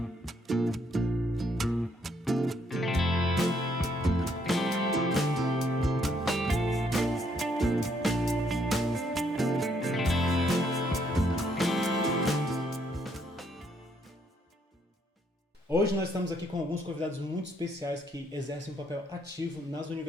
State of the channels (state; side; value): normal; both; correlation 0.71